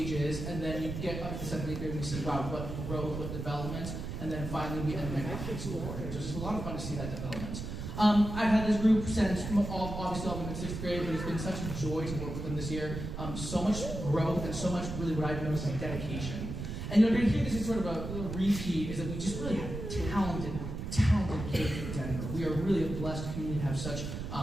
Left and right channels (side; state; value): right; noise; rumble, 6 dB below the sound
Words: and then you get up to the seventh grade and we see, wow, what growth, what development, and then finally we end up with high school board. So it's just a lot of fun to see that development. I've had this group since obviously all of them in sixth grade, but it's been such a joy to work with them this year. So much growth and so much really what I've noticed like dedication. And you're going to hear this as sort of a little repeat, is that we just really have talented kids in Denver. We are really a blessed community to have such